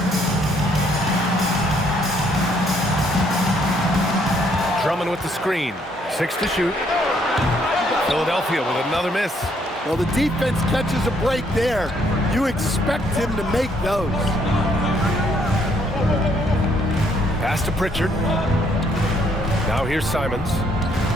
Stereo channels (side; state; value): both; normal; correlation 0.68